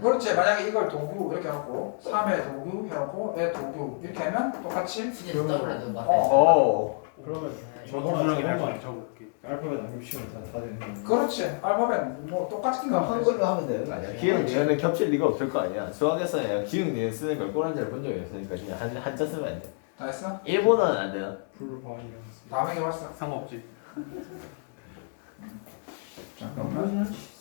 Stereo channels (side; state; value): right; silent; 59 dB below the other